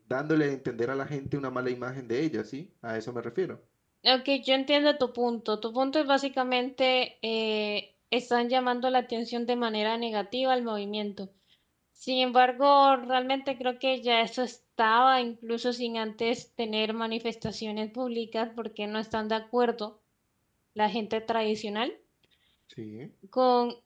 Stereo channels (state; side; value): identical; both; correlation 1.00